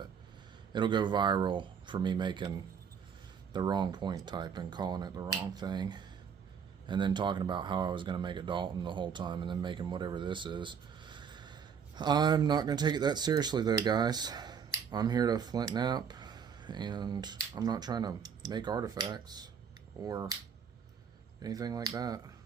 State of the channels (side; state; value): left; quieter; 7.1 dB